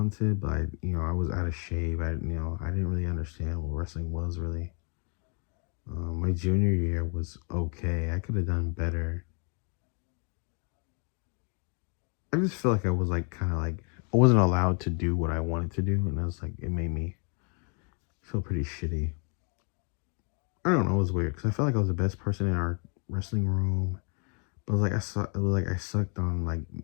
but I was out of shape. I didn't really understand what wrestling was really. My junior year was okay. I could have done better. I just feel like I was like kind of like I wasn't allowed to do what I wanted to do, and I was like it made me feel pretty shitty. I don't know. It was weird because I felt like I was the best person in our wrestling room. But it was like it was like I sucked on like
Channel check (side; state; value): right; quieter; 37.7 dB